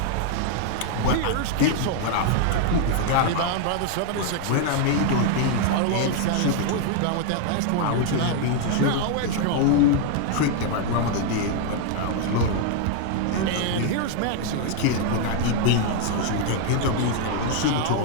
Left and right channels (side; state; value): both; different; correlation 0.00